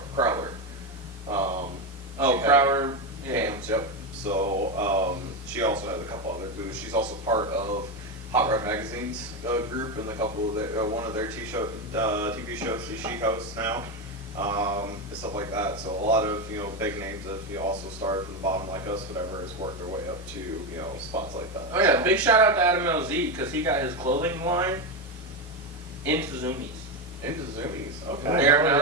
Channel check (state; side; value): normal; both; correlation 0.12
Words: Crowler. Oh, she had Crowler. Cams. Yep. So she also has a couple other booths. She's also part of Hot Rod Magazine's group and a couple of their, one of their TV shows that she hosts now. And stuff like that. So a lot of big names that also started from the bottom like us, whatever, has worked their way up to spots like that. Oh yeah, big shout out to Adam LZ because he got his clothing line into Zoomies. Into Zoomies. They Okay. are now